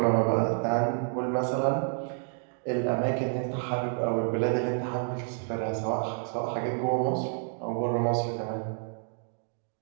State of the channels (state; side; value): silent; left; 58 dB below the other